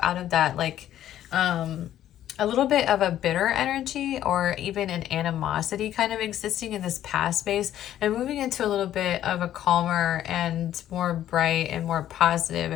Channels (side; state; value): right; quieter; 11.9 dB